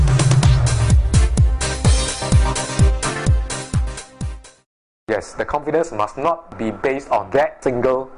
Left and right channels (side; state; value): both; identical; correlation 1.00